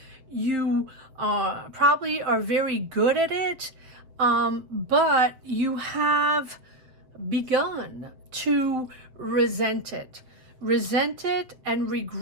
you probably are very good at it, but you have begun to resent it and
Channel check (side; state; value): left; late; 7.3 ms